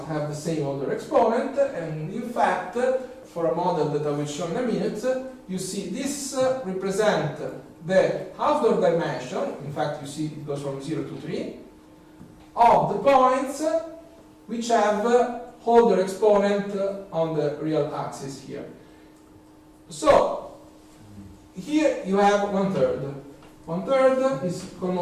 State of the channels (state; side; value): identical; both; correlation 1.00